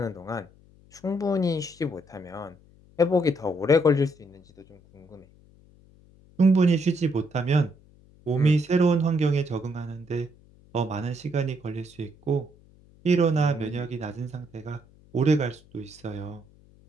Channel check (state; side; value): noise; left; hum, 27 dB below the sound